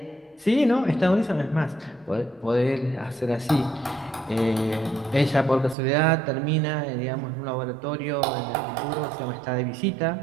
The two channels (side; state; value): left; drops out; at 5.8 s